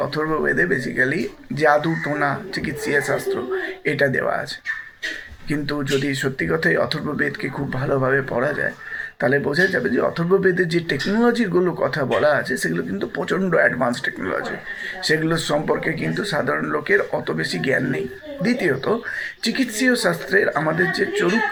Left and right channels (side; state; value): both; identical; correlation 1.00